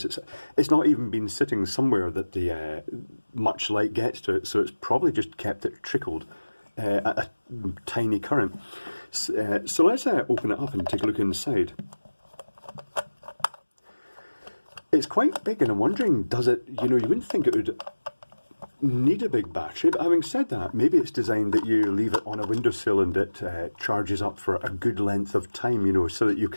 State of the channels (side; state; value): both; inverted; correlation -1.00